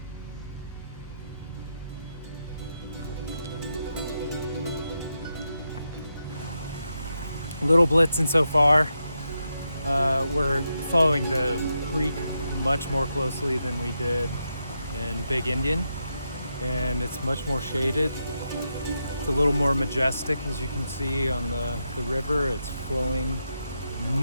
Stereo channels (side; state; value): both; inverted; correlation -0.85